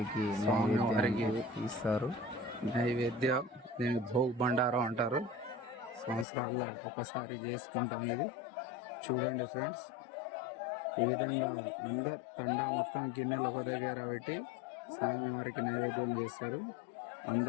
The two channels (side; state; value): right; drops out; at 6.2 s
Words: ఇస్తారు. నైవేద్యం దీన్ని భోగ్ బండారం అంటారు. సంవత్సరాల్లో ఒకసారి చేసుకుంటాం ఇది. చూడండి ఫ్రెండ్స్, ఈ విధంగా అందరు తండా మొత్తం గిన్నెలు ఒక దగ్గర పెట్టి స్వామివారికి నైవేద్యం చేస్తారు.